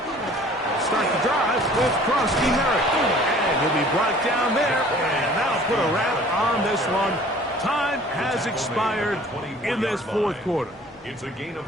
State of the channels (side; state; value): both; normal; correlation 0.50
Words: Start the drive with Krosky Merrick. And he'll be brought down there, and that'll put a wrap on this one. Time has expired in this 4th quarter. It's a gain of